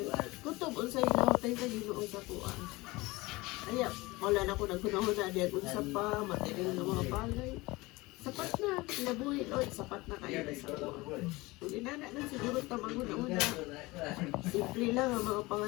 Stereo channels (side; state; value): right; quieter; 21.9 dB